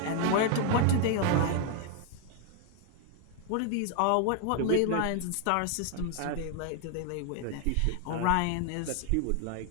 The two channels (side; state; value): both; different; correlation 0.00